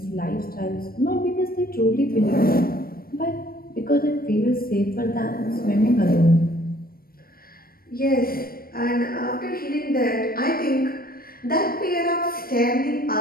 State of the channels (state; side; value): late; right; 0.43 ms